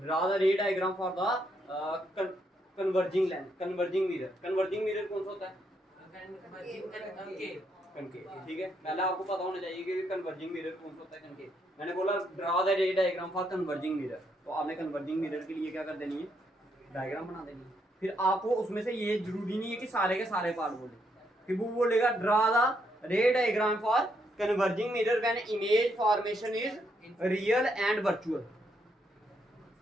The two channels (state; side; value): normal; both; correlation 0.76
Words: the ray diagram for the converging lens, converging mirror. Converging mirror कौन सा होता है? कनकेव, ठीक है। पहले आपको पता होना चाहिए कि कन्वर्जिंग मिरर कौन सा होता है, कनकेव। मैंने बोला draw the ray diagram for converging mirror, तो आपने कन्वर्जिंग मिरर के लिए क्या कर देनी है? डायग्राम बना देनी है। फिर आपको उसमें से ये जरूरी नहीं है कि सारे के सारे पार्ट बोले, फिर वो बोलेगा draw the ray diagram for converging mirror when image formation is real and virtual.